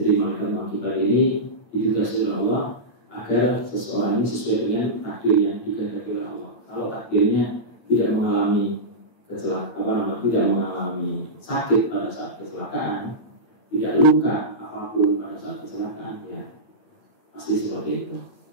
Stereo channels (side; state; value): right; late; 8.8 ms